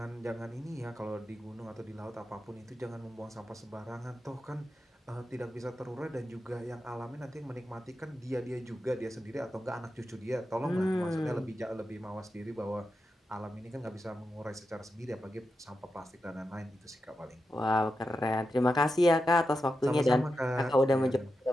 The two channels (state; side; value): normal; both; correlation 0.89